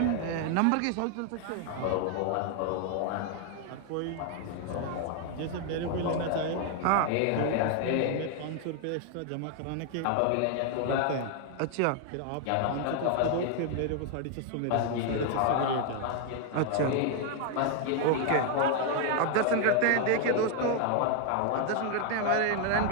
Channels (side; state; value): both; different; correlation 0.00